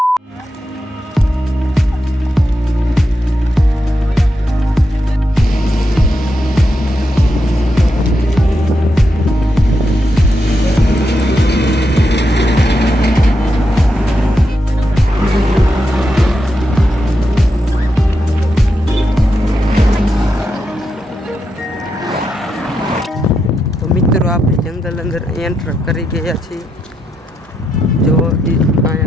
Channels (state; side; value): normal; both; correlation 0.84